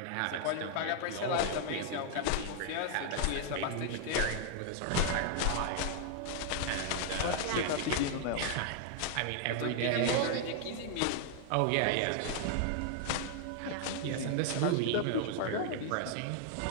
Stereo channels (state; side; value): different; both; correlation 0.00